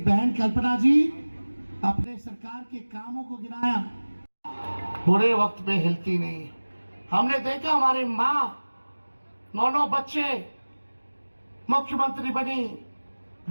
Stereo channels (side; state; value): both; inverted; correlation -1.00